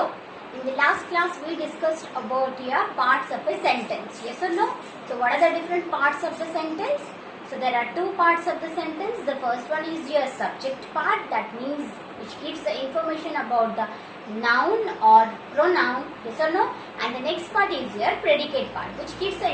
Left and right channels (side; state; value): both; identical; correlation 1.00